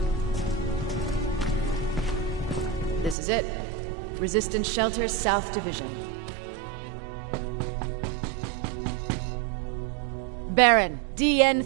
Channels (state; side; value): drops out; left; at 3.2 s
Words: This is it. Resistance Shelter, South Division. Baron, DN